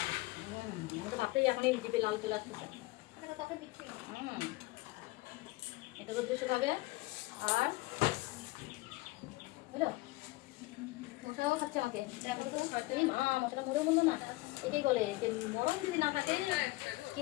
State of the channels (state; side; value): quieter; right; 21.1 dB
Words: আমি তো ভাবতেই এখনই জিভে লাল চলে আসতেছে। এটা রোদ বেশি হবে, আর বুঝলো মশাও খাচ্ছে আমাকে। এই মা মশাটা মরে বললো না, এটাই বলে যে মরণ যদি না থাকে